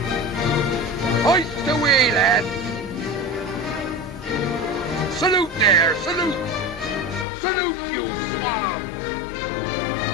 Hoist away, lad. Salute there, salute. Salute, you swab.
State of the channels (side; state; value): right; drops out; at 7.2 s